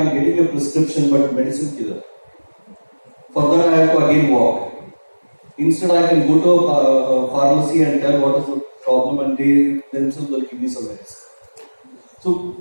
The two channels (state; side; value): inverted; both; correlation -1.00